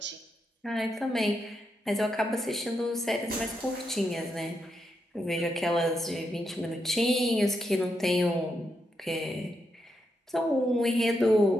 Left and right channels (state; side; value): normal; both; correlation 0.82